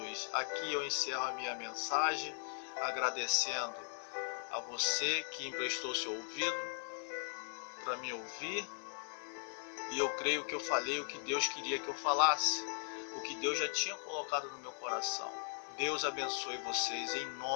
Aqui eu encerro a minha mensagem, agradecendo a você que emprestou seu ouvido para me ouvir. E eu creio que eu falei o que Deus queria que eu falasse, o que Deus já tinha colocado no meu coração. Deus abençoe vocês em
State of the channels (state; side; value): silent; right; 52 dB below the other